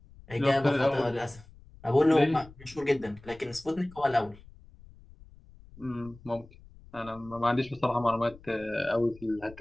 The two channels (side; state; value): left; noise; rumble, 22 dB below the sound